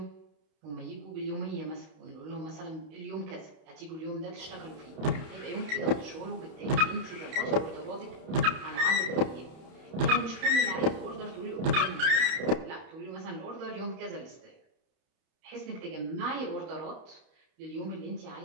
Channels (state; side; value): late; left; 31 ms